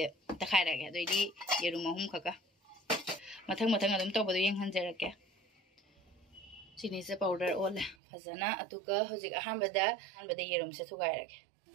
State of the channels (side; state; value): left; drops out; at 8.0 s